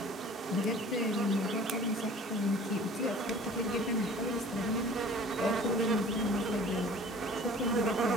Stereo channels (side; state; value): both; normal; correlation 0.47